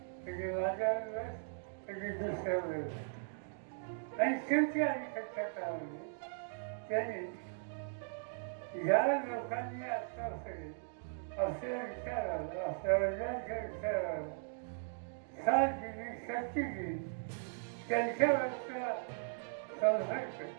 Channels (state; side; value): silent; left; digital silence